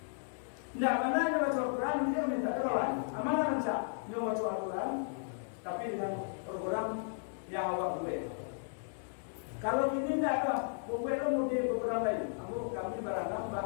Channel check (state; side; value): silent; right; digital silence